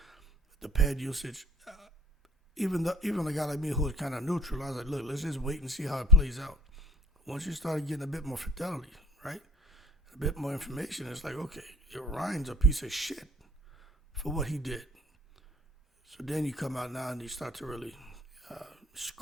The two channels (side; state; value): both; normal; correlation 0.49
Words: the pad usage, even a guy like me who was kind of neutral, I was like, look, let's just wait and see how it plays out. Once you started getting a bit more fidelity, right, a bit more information, it's like, okay, Ryan's a piece of shit for what he did. So then you come out now and you start to really